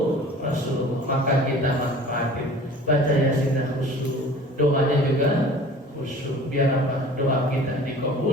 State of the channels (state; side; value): normal; both; correlation 0.45